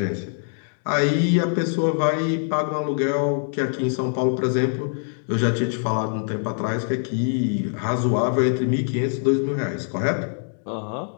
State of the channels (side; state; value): right; silent; digital silence